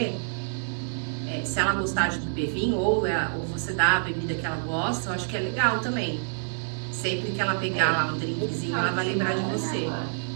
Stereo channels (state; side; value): silent; left; digital silence